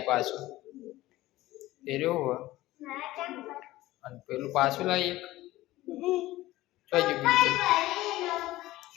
પાછું એ રહ્યો અને પેલું પાછું લાવી એક બીજું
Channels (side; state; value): right; quieter; 17.0 dB